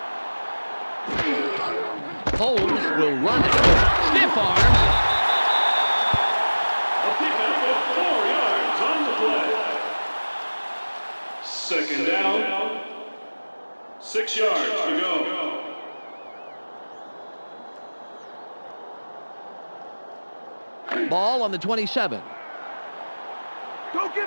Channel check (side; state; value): both; inverted; correlation -1.00